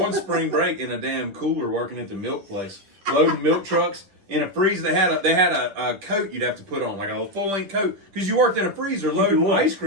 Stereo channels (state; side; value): late; left; 10 ms